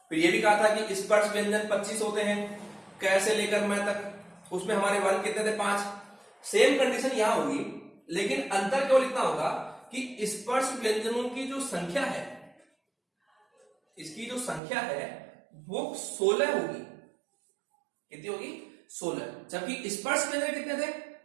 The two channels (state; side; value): drops out; left; at 14.6 s